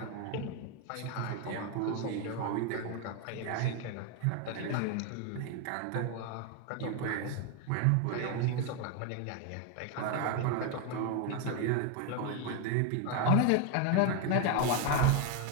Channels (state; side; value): different; both; correlation 0.01